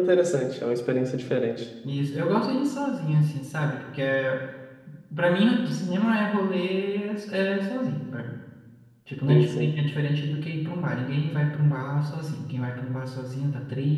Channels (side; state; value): both; identical; correlation 1.00